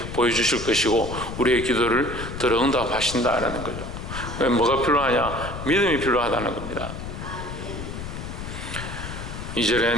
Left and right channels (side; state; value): left; noise; rumble, 8 dB below the sound